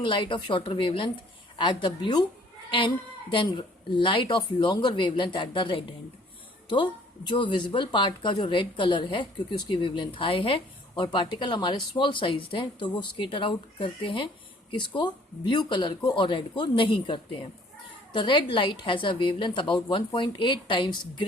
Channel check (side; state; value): both; normal; correlation 0.57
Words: light of shorter wavelength at the blue end than light of longer wavelength at the red end. तो जो visible part का जो red colour है, क्योंकि उसकी wavelength high है और पार्टिकल हमारे स्मॉल साइज हैं, तो वो स्केटर आउट करते हैं किसको, ब्लू कलर को, और रेड को नहीं करते हैं। The red light has a wavelength about 1.8 times